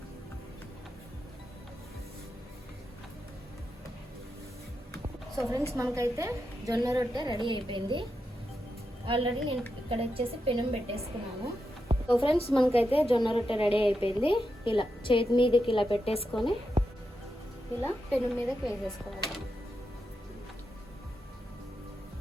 సో ఫ్రెండ్స్, మనకైతే జొన్న రొట్టె రెడీ అయిపోయింది. ఆల్రెడీ నేను ఇక్కడ వచ్చేసి పెనం పెట్టేసుకున్నాను. సో ఫ్రెండ్స్, మనకైతే జొన్న రొట్టె రెడీ అయిపోయింది. ఇలా చేతి మీదకి ఇలా పెట్టేసుకొని ఇలా పెనం మీదకి వేసేసుకోవాలి.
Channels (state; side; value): normal; both; correlation 0.87